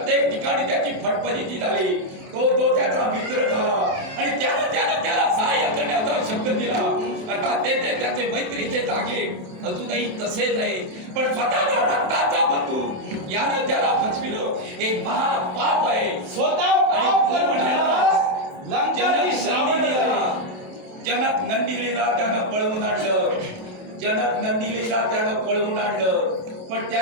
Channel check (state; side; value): late; left; 27 ms